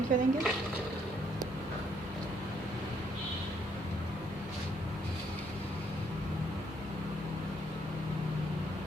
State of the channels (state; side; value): normal; both; correlation 0.70